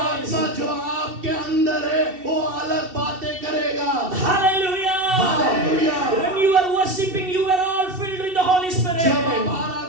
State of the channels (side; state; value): left; late; 2.7 ms